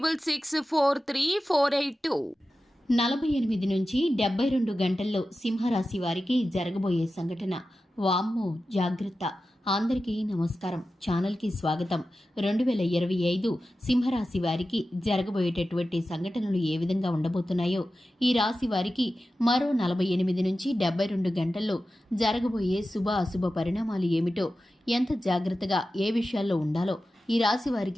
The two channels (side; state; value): both; normal; correlation 0.93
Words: 48 నుంచి 72 గంటల్లో సింహరాశి వారికి జరగబోయే సంఘటన. వామ్మో జాగ్రత్త. అందరికీ నమస్కారం. ఛానల్కి స్వాగతం. 2025 సింహరాశి వారికి జరగబోయేటటువంటి సంఘటనలు ఏ విధంగా ఉండబోతున్నాయో, ఈ రాశి వారికి మరో 48 నుంచి 72 గంటల్లో జరగబోయే శుభ అశుభ పరిణామాలు ఏమిటో, ఎంత జాగ్రత్తగా ఏ విషయాల్లో ఉండాలో, ఈ రాశి